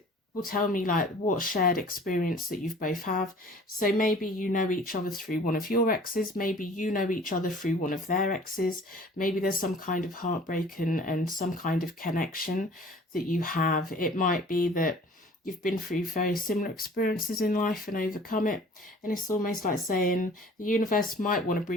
will tell me like what shared experience that you've both have. So maybe you know each other through one of your exes, maybe you know each other through one of their exes, maybe there's some kind of heartbreak and some kind of connection that you have. It might be that you've been through very similar experiences in life and overcome it. And it's almost like saying the universe might want to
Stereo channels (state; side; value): normal; both; correlation 0.48